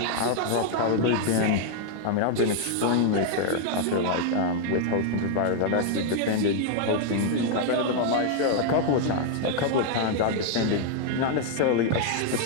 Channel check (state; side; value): different; both; correlation 0.00